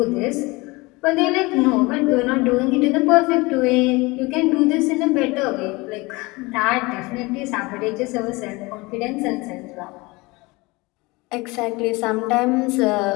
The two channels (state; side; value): quieter; right; 23.7 dB